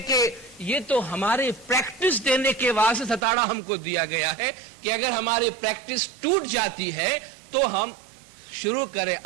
کہ یہ تو ہماری پریکٹس دینے کے واسطے ستاڑا ہم کو دیا گیا ہے کہ اگر ہماری پریکٹس ٹوٹ جاتی ہے تو ہم شروع کریں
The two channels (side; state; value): left; drops out; at 3.2 s